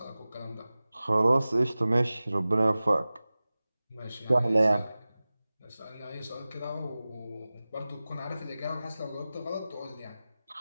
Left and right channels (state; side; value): inverted; both; correlation -0.97